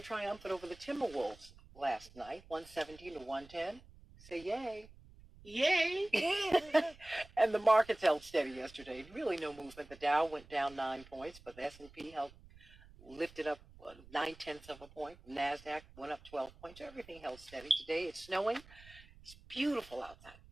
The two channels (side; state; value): right; noise; rumble, 22 dB below the sound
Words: triumphant over the Timberwolves last night, 117-110. Say yay. Yay. And the markets held steady yesterday. Really no movement. The Dow went down 9 points, but the S&P lifted up 0.9 of a point. NASDAQ went up 12 points. Everything held steady. Today it's snowing. It's beautiful outside.